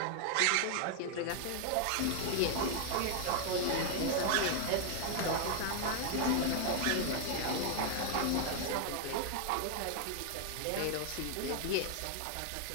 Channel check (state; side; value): different; both; correlation 0.00